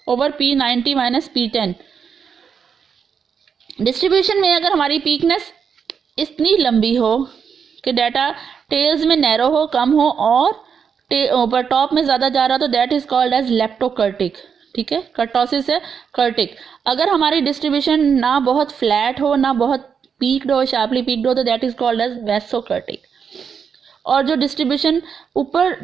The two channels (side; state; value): left; quieter; 6.7 dB